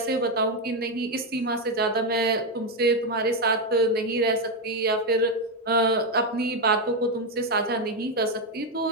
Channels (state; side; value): normal; both; correlation 0.06